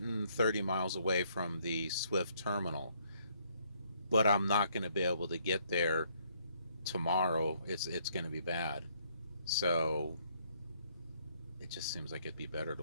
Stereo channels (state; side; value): inverted; both; correlation -0.68